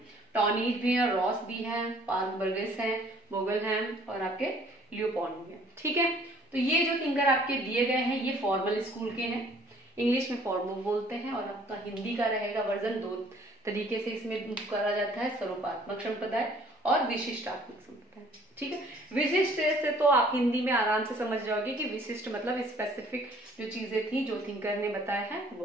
टॉनीज भी हैं, रॉस भी हैं, पार्क बर्गेस हैं, बोगल हैं, और आपके लियोपॉन्ड भी हैं, ठीक है। तो ये जो थिंकर आपके दिए गए हैं ये फॉर्मल स्कूल के हैं। इंग्लिश में फॉर्मल बोलते हैं, और आपका हिंदी का रहेगा वर्जन 2 तरीके से इसमें करा जाता है, स्वरूपात्मक संप्रदाय और विशिष्टात्मक संप्रदाय, ठीक है। विशिष्ट से तो आप हिंदी में आराम से समझ जाओगे कि विशिष्ट मतलब स्पेसिफिक जो चीजें थी जो थिंकर ने बताया है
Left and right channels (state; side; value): normal; both; correlation 0.57